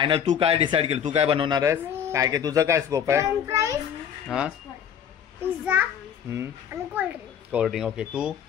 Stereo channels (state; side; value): quieter; right; 8.6 dB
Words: तू काय डिसाईड केलं तू काय बनवणार आहेस काय काय तुझं काय स्कोप आहे फ्रेंच फ्राईज, हा पिझ्झा आणि कोल्ड्रिंक. कोल्ड्रिंक ओके तू